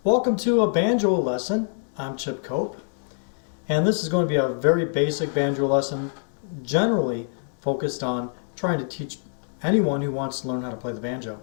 welcome to a banjo lesson. I'm Chip Cope, and this is going to be a very basic banjo lesson, generally focused on trying to teach anyone who wants to learn how to play the banjo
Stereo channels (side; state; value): right; silent; digital silence